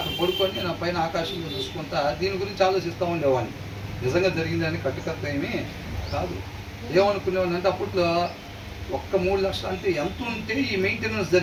అక్కడ పడుకొని నా పైన ఆకాశంలో చూసుకుంటా దీని గురించి ఆలోచిస్తూ ఉండేవాడిని. నిజంగా జరిగిందని కట్టుకత్త ఏమీ కాదు. ఏమనుకునేవాడిని అంటే అప్పట్లో ఒక్క 3 లక్షలు అంటే ఎంత ఉంటే ఈ మెయింటెనెన్స్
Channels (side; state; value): both; identical; correlation 1.00